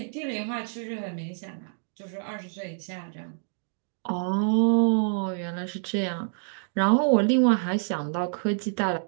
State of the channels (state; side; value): silent; left; digital silence